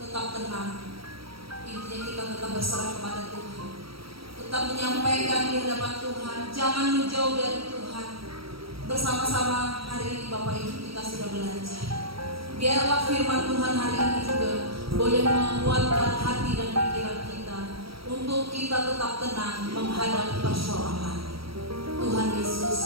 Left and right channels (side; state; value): left; late; 0.75 ms